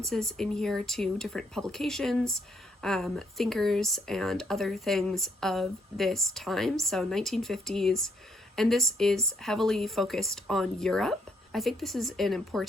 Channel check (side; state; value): both; normal; correlation 0.72